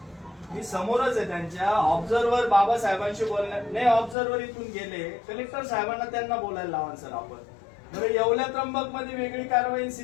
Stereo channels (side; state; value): right; drops out; at 4.2 s